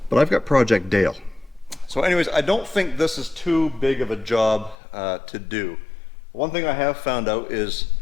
but I've got Project Dale. So anyways, I don't think this is too big of a job to do. One thing I have found out is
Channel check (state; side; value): drops out; right; at 4.8 s